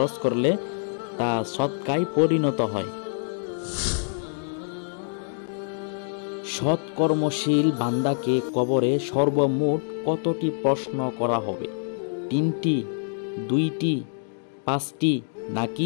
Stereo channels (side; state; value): right; silent; digital silence